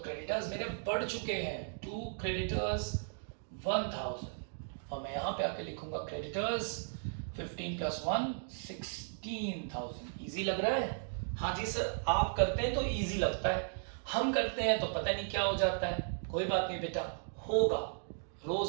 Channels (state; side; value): silent; left; digital silence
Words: मेरे बढ़ चुके हैं, टू क्रेडिटर्स 1,000। और मैं यहां पे आके लिखूंगा क्रेडिटर्स 15 प्लस 1 16,000। इजी लग रहा है? हाँ जी सर, आप करते हैं तो इजी लगता है, हम करते हैं तो पता नहीं क्या हो जाता है। कोई बात नहीं बेटा, होगा,